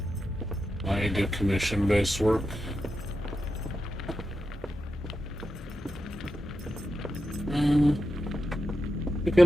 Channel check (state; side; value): normal; both; correlation 0.89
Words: I do commission-based work. We